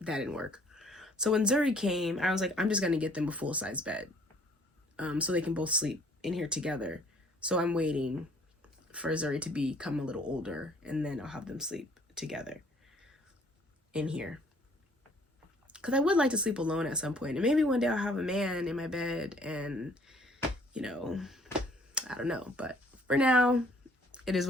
didn't work. So when Zuri came, I was like, I'm just going to get them a full-size bed, so they can both sleep in here together. So I'm waiting for Zuri to become a little older, and then I'll have them sleep together in here. Because I would like to sleep alone at some point. And maybe one day I'll have a man in my bed, and, I don't know. But for now, it is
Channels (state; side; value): normal; both; correlation 0.59